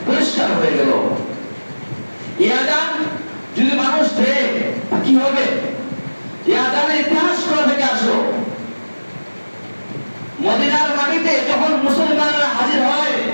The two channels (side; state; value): both; inverted; correlation -1.00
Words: পরিষ্কার হয়ে গেল। এই আযান যদি মানুষ দেয় কি হবে? এই আযানের ইতিহাস কোথা থেকে আসলো? মদিনার মাটিতে যখন মুসলমানরা হাজির হয়,